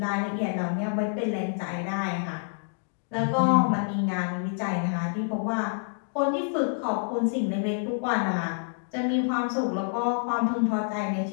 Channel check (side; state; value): right; silent; digital silence